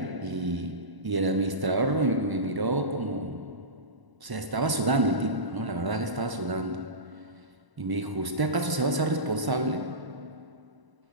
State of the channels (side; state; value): left; late; 1.0 ms